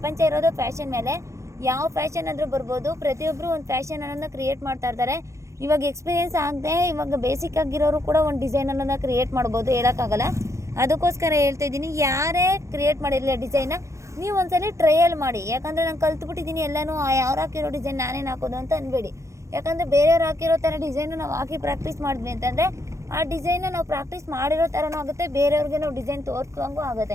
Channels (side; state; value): left; late; 0.14 ms